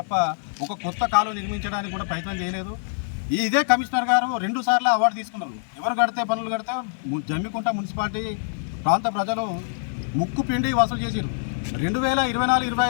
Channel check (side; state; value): right; silent; digital silence